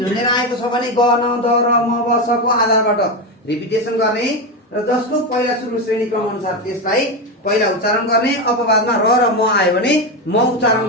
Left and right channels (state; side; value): normal; both; correlation 0.13